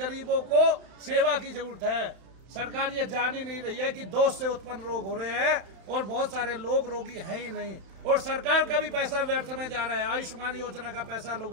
को सेवा की जरूरत है। सरकार ये जान ही नहीं रही है कि दोष से उत्पन्न रोग हो रहे हैं और बहुत सारे लोग रोगी हैं ही नहीं, और सरकार का भी पैसा व्यर्थ में जा रहा है। आयुष्मान योजना का पैसा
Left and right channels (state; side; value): late; left; 31 ms